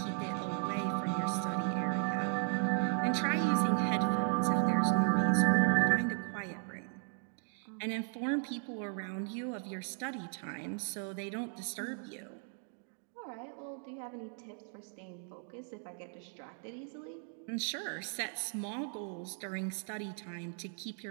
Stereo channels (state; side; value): silent; left; 54 dB below the other